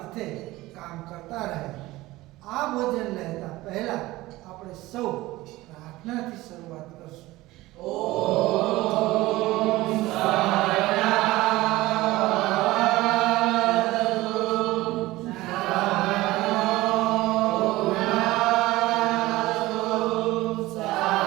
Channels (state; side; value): quieter; left; 18.5 dB